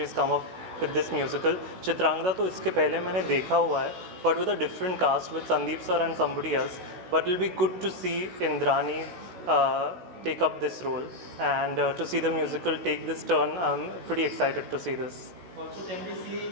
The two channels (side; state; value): left; late; 16 ms